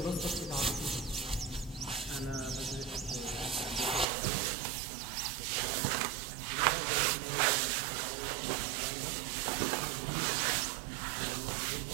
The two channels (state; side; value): drops out; left; at 4.0 s